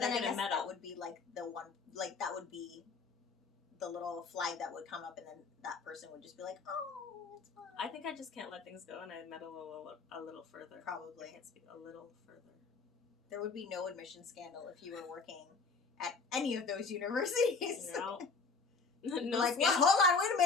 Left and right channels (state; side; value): quieter; right; 4.5 dB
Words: I guess that would be like the one, like that would be the little flag that would come up and then that person would just be like, oh, it's fine. I think I just can't let things go and I meddle a little further. Probably. I can't speak a little further. There would be no admission scandal if you were working at any of those universities. No. No like, well, hold on, wait